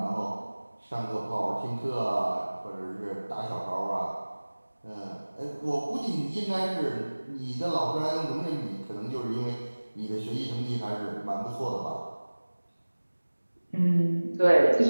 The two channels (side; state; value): both; inverted; correlation -1.00